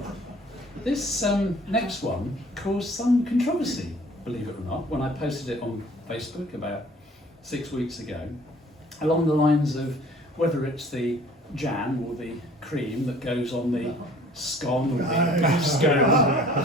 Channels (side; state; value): both; normal; correlation 0.52